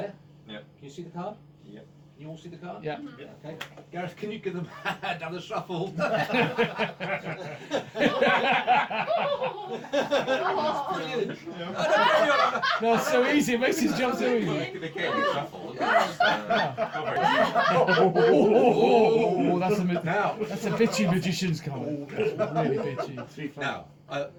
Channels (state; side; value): identical; both; correlation 1.00